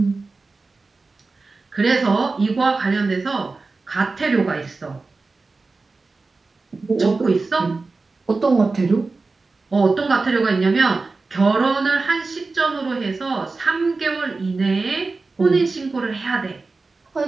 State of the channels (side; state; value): left; quieter; 3.8 dB